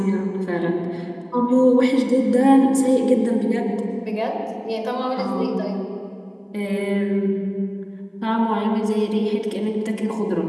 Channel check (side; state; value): both; identical; correlation 1.00